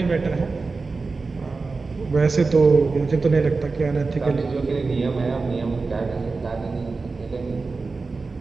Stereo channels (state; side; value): quieter; left; 4.0 dB